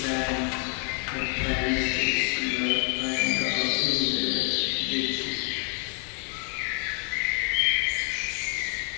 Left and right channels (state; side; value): quieter; right; 37.8 dB